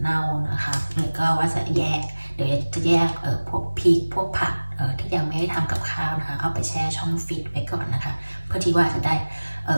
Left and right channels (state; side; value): inverted; both; correlation -1.00